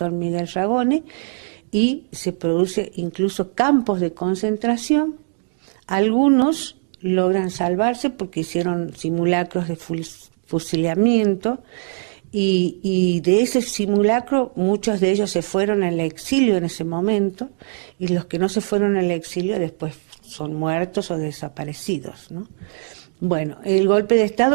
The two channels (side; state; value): left; silent; 63 dB below the other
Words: Miguel Ragone, y se produce incluso campos de concentración. Algunos logran salvarse porque hicieron simulacros de fusilamiento y de ese simulacro muchos de ellos se fueron al exilio en ese momento y los que no se fueron al exilio después son muertos o desaparecidos, ¿no? Bueno, el golpe de